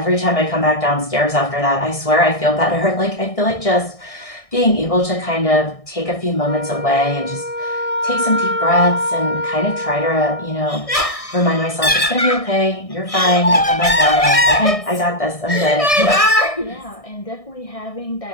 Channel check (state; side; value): late; right; 1.6 ms